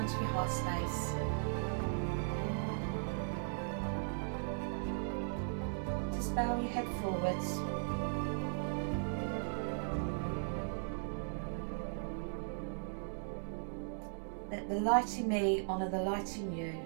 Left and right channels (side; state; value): left; silent; digital silence